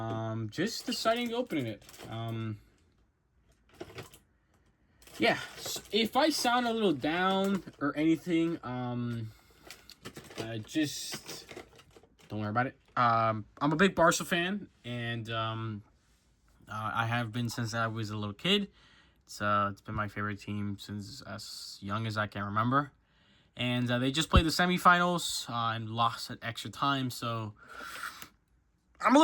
just deciding to open it. Yeah, so if I sound a little down or anything, just don't worry about it. I'm a big Barca fan, and I have been since I was a little kid. It's been my favorite team since as young as I can remember. And they just played the semifinals and lost at extra time, so I'm a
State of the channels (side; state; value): both; identical; correlation 1.00